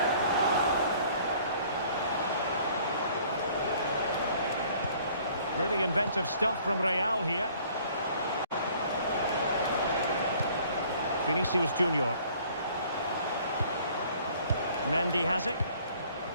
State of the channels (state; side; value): inverted; both; correlation -0.56